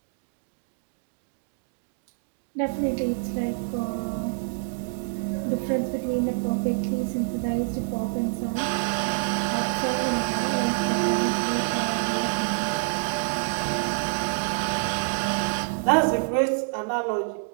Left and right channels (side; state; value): left; silent; digital silence